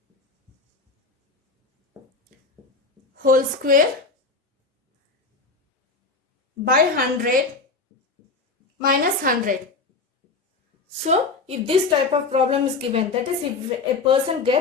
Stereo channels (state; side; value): quieter; right; 3.9 dB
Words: whole square by 100 minus 100. So if this type of problem is given, that is if a person